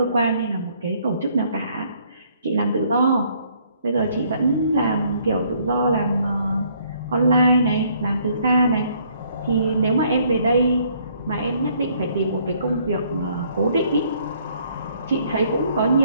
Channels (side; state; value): both; inverted; correlation -0.65